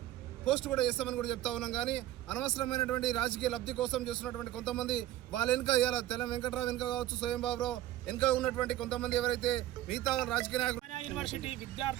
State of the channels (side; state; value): left; quieter; 14.1 dB